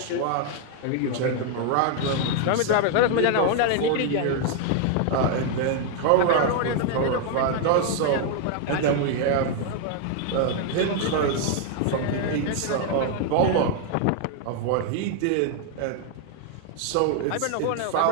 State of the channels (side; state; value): both; different; correlation 0.00